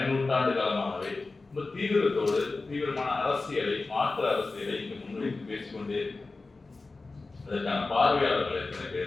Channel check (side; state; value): right; quieter; 3.6 dB